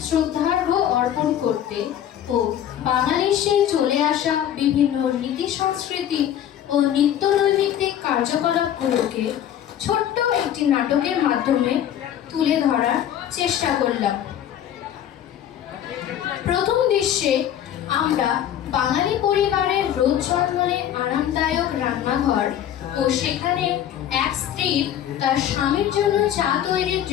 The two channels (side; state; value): right; quieter; 10.6 dB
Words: শ্রদ্ধার্ঘ্য অর্পণ করতে ও বাঙালির সেই চলে আসা বিভিন্ন রীতি সংস্কৃতি ও নিত্য নৈমিত্তিক কার্যকলাপগুলোকে ছোট্ট একটি নাটকের মাধ্যমে তুলে ধরার চেষ্টা করলাম। প্রথম দৃশ্যে আমরা বাঙালি পরিবারের রোজ জন্মনে আরামদায়ক রান্নাঘর ও সেখানে এক স্ত্রীর তার স্বামীর জন্য চা তৈরির